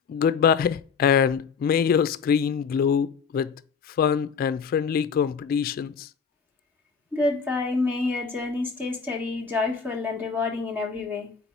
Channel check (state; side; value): quieter; right; 5.9 dB